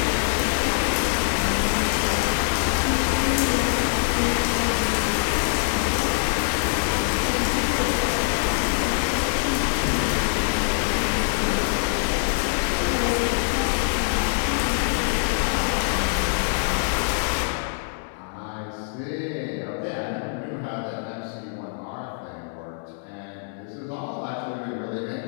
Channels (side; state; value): right; silent; digital silence